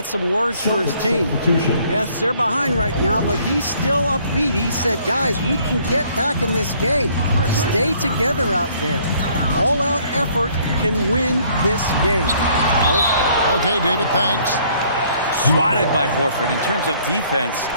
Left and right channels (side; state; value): both; inverted; correlation -0.62